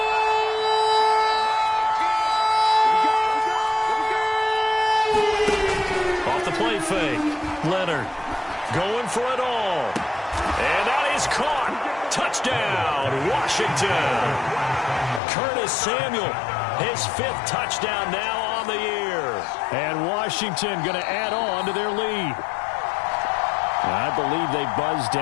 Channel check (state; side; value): drops out; right; at 15.2 s